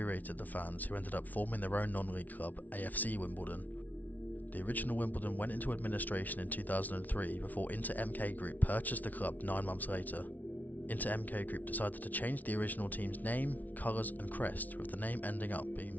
the fans, who ended up forming their own non-league club, AFC Wimbledon. The original Wimbledon went into administration in 2003 before Inter MK Group purchased the club 9 months later. Inter MK Group decided to change the original team's name, colours and crest, with the name ending up being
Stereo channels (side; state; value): right; late; 0.077 ms